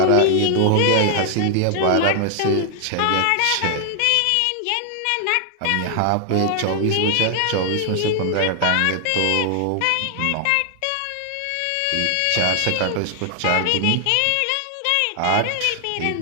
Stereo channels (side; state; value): both; different; correlation 0.00